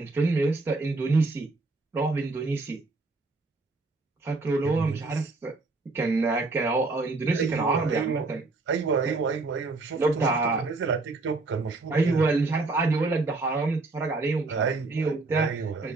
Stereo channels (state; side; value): quieter; left; 3.5 dB